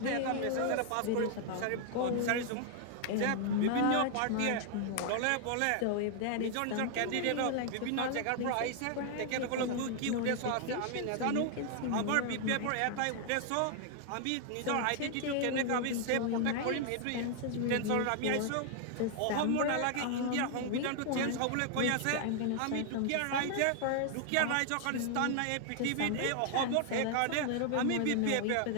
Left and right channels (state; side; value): different; both; correlation 0.00